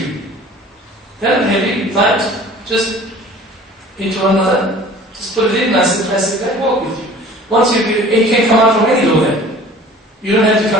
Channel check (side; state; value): both; normal; correlation 0.46